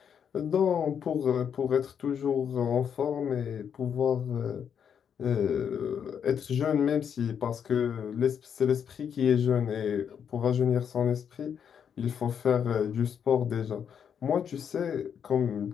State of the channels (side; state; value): right; quieter; 7.9 dB